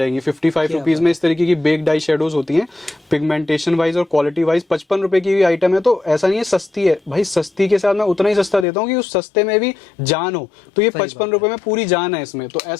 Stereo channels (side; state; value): right; drops out; at 8.7 s